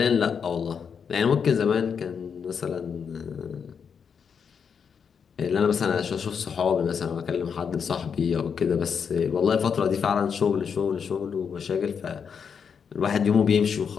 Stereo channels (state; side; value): quieter; right; 6.7 dB